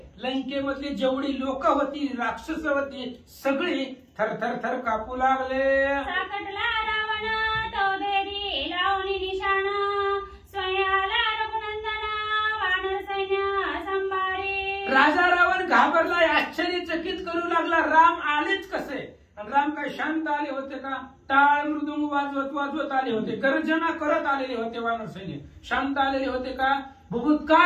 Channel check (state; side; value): identical; both; correlation 1.00